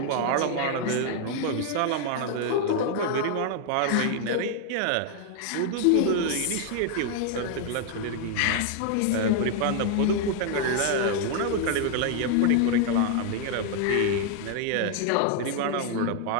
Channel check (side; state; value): both; different; correlation 0.00